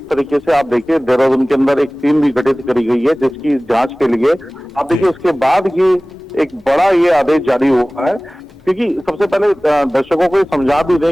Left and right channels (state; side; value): normal; both; correlation 0.98